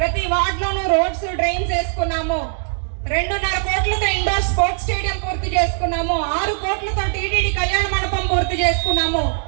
వార్డులోనూ రోడ్స్, డ్రైన్స్ వేసుకున్నాము. 2.5 కోట్లతో ఇండోర్ స్పోర్ట్స్ స్టేడియం పూర్తి చేసుకున్నాము. 6 కోట్లతో టీటీడీ కళ్యాణ మండపం పూర్తి చేసుకున్నాము.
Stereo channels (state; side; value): silent; left; digital silence